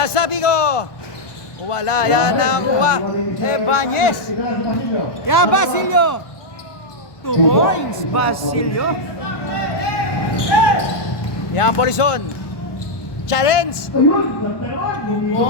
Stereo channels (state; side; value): late; right; 1.2 ms